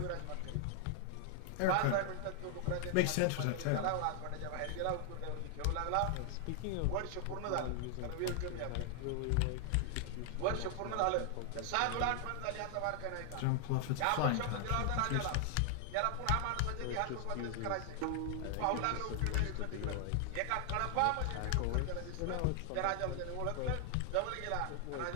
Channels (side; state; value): both; different; correlation 0.00